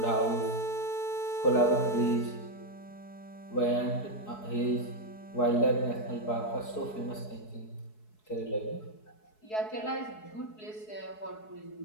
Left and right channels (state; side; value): late; right; 4.7 ms